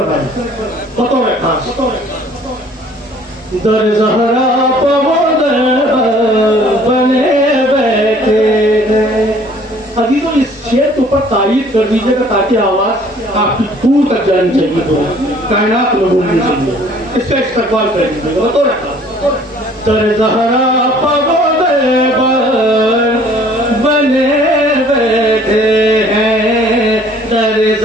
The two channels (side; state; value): both; normal; correlation 0.55